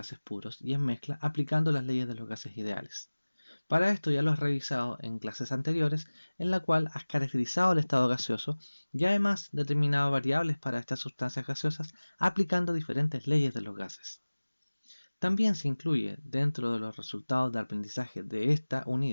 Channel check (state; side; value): inverted; both; correlation -1.00